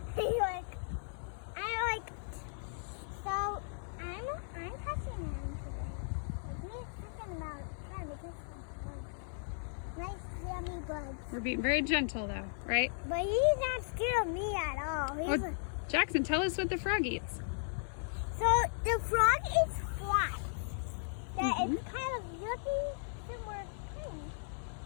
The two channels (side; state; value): right; silent; 54 dB below the other